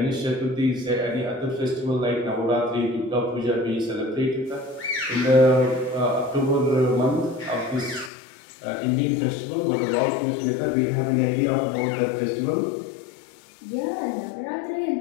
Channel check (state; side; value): drops out; right; at 8.1 s